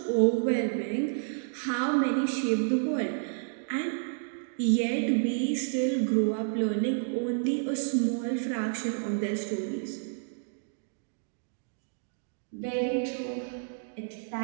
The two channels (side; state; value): left; silent; digital silence